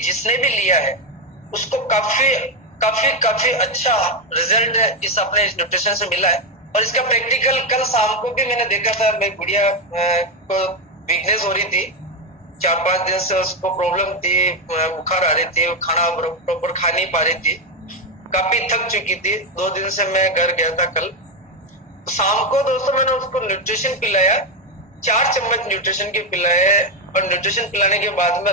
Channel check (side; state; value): both; normal; correlation 0.07